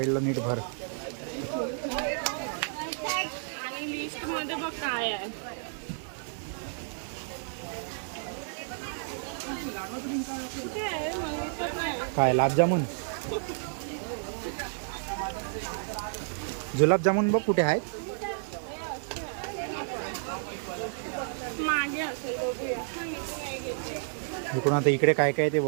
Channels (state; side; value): silent; left; digital silence